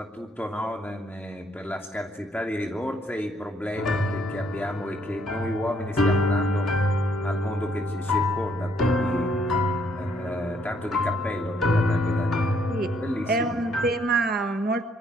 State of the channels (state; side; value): normal; both; correlation 0.68